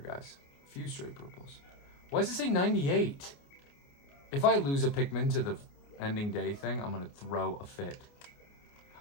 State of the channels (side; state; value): right; late; 29 ms